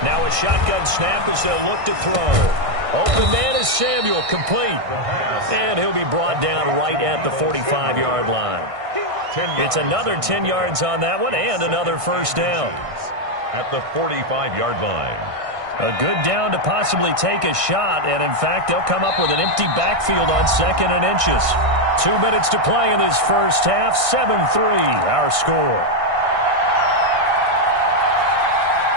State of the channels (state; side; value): late; left; 1.6 ms